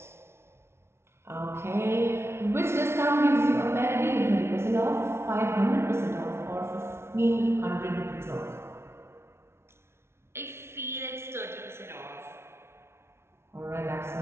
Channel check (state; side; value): late; left; 0.12 ms